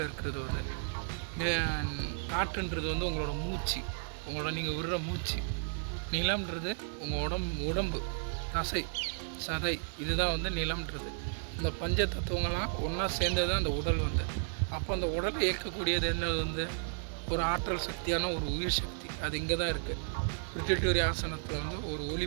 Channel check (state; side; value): silent; left; digital silence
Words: இருக்கிறது வந்து. காற்றுன்றது வந்து உங்களோட மூச்சு, உங்களோட நீங்கள் விடுற மூச்சு. நிலம்ன்றது உங்கள் உடம்பு தசை சதை, இதுதான் வந்து நிலம்ன்றது. இந்த பஞ்ச தத்துவங்கள்லாம் ஒன்றா சேர்ந்தது தான் அந்த உடல் வந்து. அப்போ அந்த உடலை இயக்கக்கூடியது என்னது வந்து ஒரு ஆற்றல் சக்தியான ஒரு உயிர் சக்தி. அது இங்கே தான் இருக்குது. பிரிட்டிட்டோரி ஆசனத்தில் வந்து ஒரு ஒளி